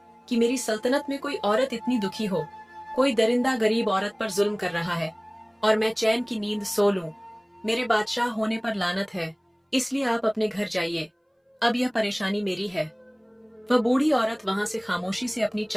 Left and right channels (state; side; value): identical; both; correlation 1.00